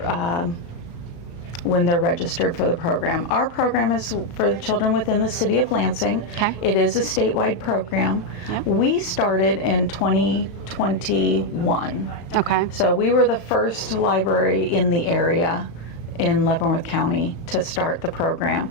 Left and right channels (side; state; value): right; late; 35 ms